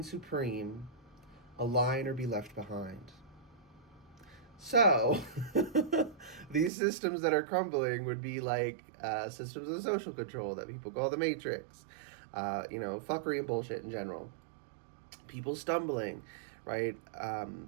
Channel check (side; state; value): left; drops out; at 6.7 s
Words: supreme, align or be left behind. So, these systems that are crumbling would be like systems of social control that people call the matrix, fuckery and bullshit in general. People stumbling, right?